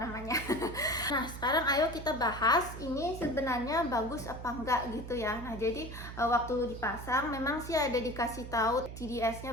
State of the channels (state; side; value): noise; right; hum, 10 dB below the sound